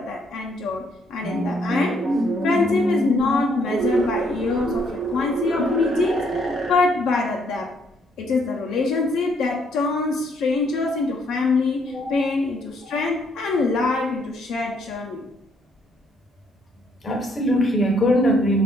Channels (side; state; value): both; normal; correlation 0.69